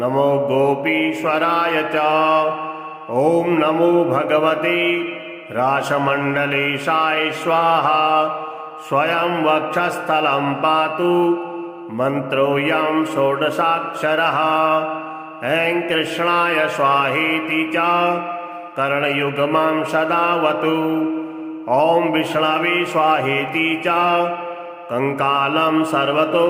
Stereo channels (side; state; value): both; identical; correlation 1.00